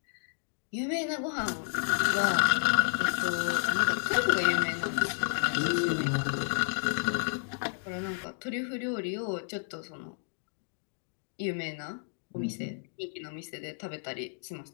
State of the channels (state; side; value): silent; right; digital silence